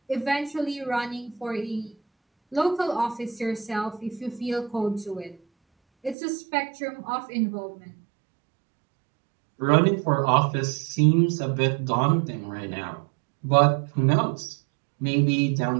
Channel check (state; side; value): drops out; left; at 6.2 s